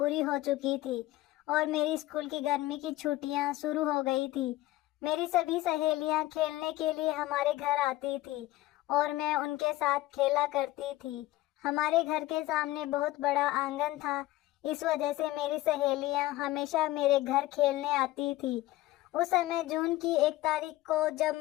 हो चुकी थी और मेरी स्कूल की गर्मी की छुट्टियां शुरू हो गई थी। मेरी सभी सहेलियां खेलने के लिए हमारे घर आती थी और मैं उनके साथ खेला करती थी। हमारे घर के सामने बहुत बड़ा आंगन था, इस वजह से मेरी सहेलियां हमेशा मेरे घर खेलने आती थी। उस समय जून की 1 तारीख को जब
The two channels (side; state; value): right; quieter; 17.0 dB